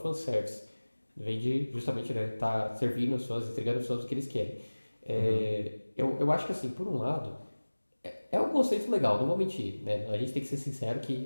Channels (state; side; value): inverted; both; correlation -1.00